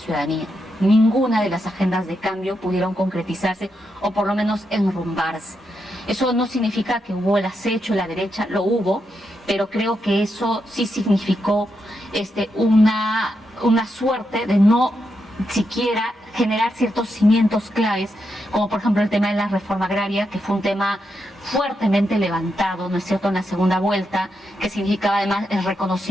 Ninguna de las agendas de cambio pudieron concretizarse o por lo menos enrumbarse. Eso no significa que hubo el acecho en la derecha, lo hubo, pero creo que eso sí significó una suerte de no siquiera generar ciertos cimientos claves, como por ejemplo el tema de la reforma agraria, que fue un tema fuertemente levantado, ¿no es cierto?, en la segunda vuelta, que significaba además el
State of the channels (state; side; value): normal; both; correlation 0.84